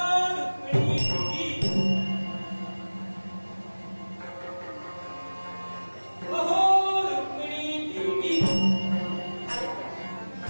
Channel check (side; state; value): both; inverted; correlation -1.00